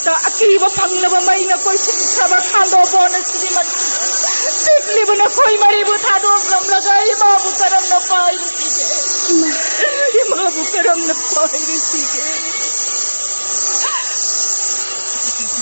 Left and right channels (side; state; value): both; inverted; correlation -1.00